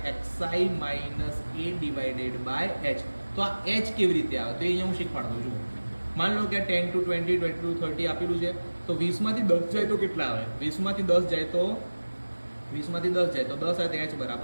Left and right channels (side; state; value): both; inverted; correlation -1.00